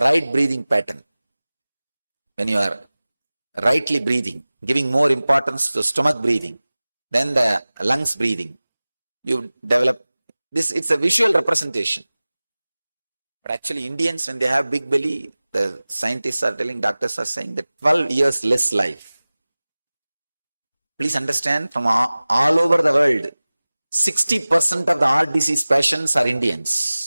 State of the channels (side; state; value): both; inverted; correlation -0.98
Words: breathing pattern. When you are rightly breathing, giving more importance to stomach breathing, then the lungs breathing, you develop this. It's a visual representation. But actually, Indians, when they have big belly, the scientists are telling, doctors are saying that 12 years less life. Please understand, from all over the world, 60% of the heart disease patients are